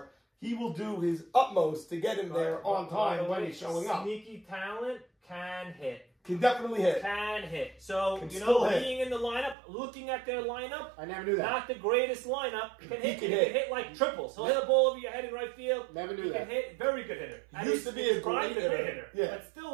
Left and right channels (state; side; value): drops out; left; at 9.6 s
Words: he will do his utmost to get him there on time when he's showing up. Sneaky talent can hit. Can definitely hit. Can hit. So, Can being in the lineup, looking at their lineup, I never knew that. Not the greatest lineup. Can hit. He can hit like triples. He'll hit a ball over your head in right field. Never knew he that. Can hit. Very good hitter. He used to be a great hitter. Yeah. But